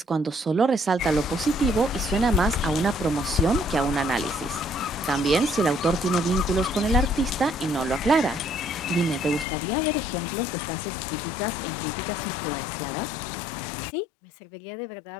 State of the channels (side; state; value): right; drops out; at 9.5 s